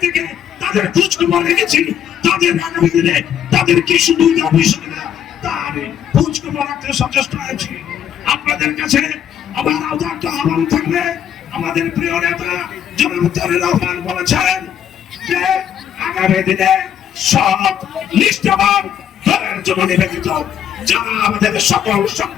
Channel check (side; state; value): right; quieter; 9.4 dB